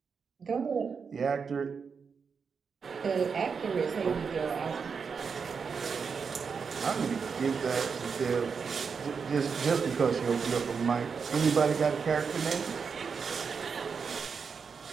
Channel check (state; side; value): quieter; left; 5.8 dB